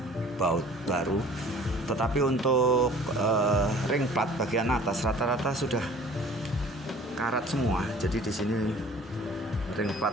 baut baru, tetapi untuk ring plat bagian atas rata-rata sudah karat semua. Jadi di sini ring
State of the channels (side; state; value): both; normal; correlation 0.49